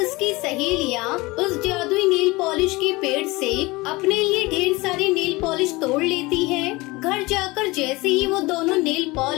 सहेलियाँ उस जादुई नेल पॉलिश के पेड़ से अपने लिए ढेर सारी नेल पॉलिश तोड़ लेती हैं। घर जाकर जैसे ही वो दोनों नेल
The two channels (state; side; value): quieter; right; 22.4 dB